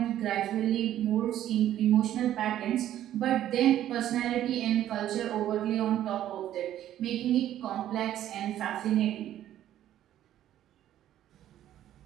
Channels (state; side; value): quieter; left; 12.1 dB